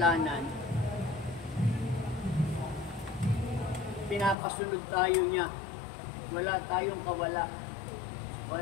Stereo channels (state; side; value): drops out; right; at 4.4 s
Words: pinapasunod tayo niya. Wala tayong kawala.